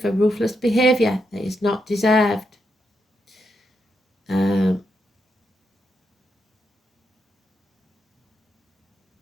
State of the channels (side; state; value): both; normal; correlation 0.82